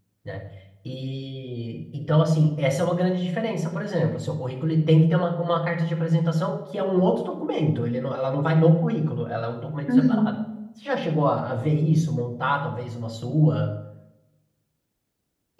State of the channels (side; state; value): both; identical; correlation 1.00